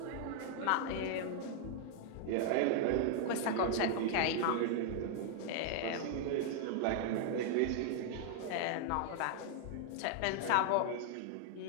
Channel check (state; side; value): different; both; correlation 0.00